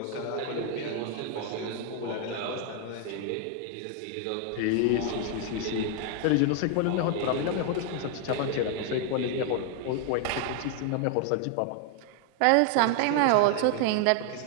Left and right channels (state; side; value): different; both; correlation 0.00